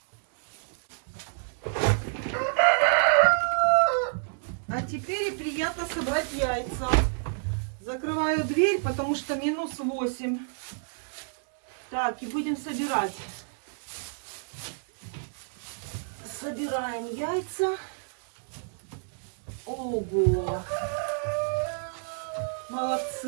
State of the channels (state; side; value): silent; left; digital silence